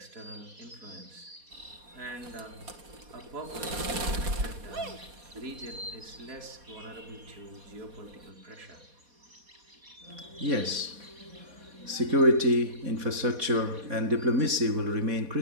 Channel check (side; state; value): left; late; 4.2 ms